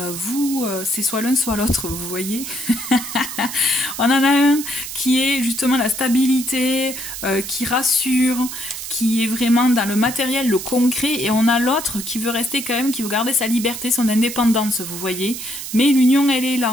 c'est soit l'un soit l'autre, vous voyez. On en a un qui est justement la stabilité, qui rassure, qui est vraiment dans le matériel, le concret, et on a l'autre qui veut rester quand même, qui veut garder sa liberté, son indépendance, vous voyez. Mais l'union, elle est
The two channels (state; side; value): noise; right; hiss, 8 dB below the sound